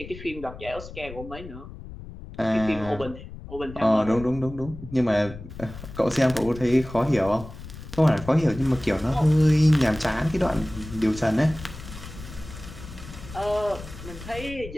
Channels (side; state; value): left; noise; rumble, 14 dB below the sound